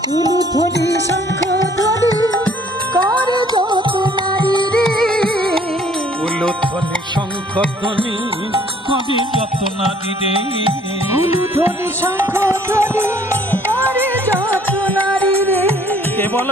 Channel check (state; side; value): normal; both; correlation 0.59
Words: উলুধ্বনি শঙ্খ ধ্বনি করে যত নারী রে, উলুধ্বনি শঙ্খ ধ্বনি কবি যত নারী রে, উলুধ্বনি শঙ্খ ধ্বনি করে যত নারী রে। কেবল